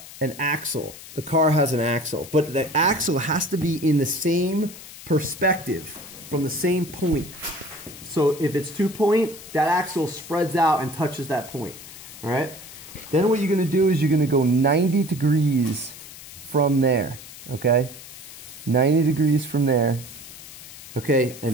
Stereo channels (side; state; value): left; noise; hiss, 16 dB below the sound